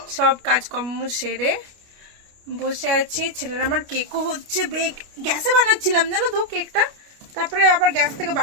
সব কাজকর্ম সেরে বসে আছি। ছেলের আমার কেকও হচ্ছে, বেক গ্যাসে বানাচ্ছিলাম জানো তো কেকটা, তারপরে আবার গ্যাস থেকে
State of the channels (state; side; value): late; left; 29 ms